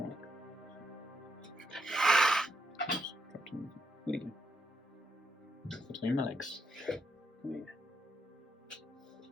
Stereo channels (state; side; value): normal; both; correlation 0.78